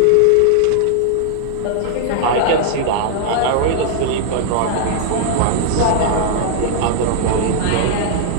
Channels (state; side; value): different; both; correlation -0.01